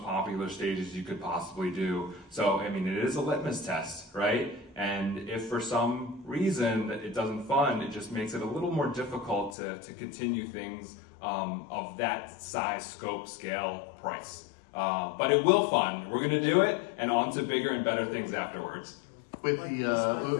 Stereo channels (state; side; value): drops out; right; at 9.6 s